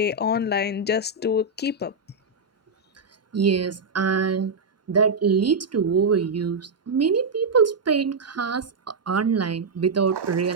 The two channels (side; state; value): left; quieter; 3.6 dB